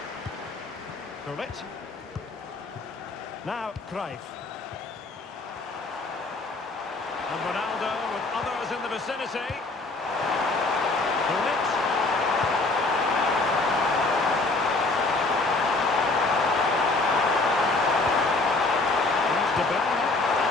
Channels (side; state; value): right; quieter; 3.3 dB